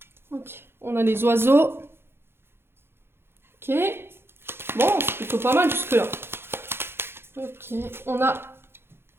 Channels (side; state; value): left; late; 0.11 ms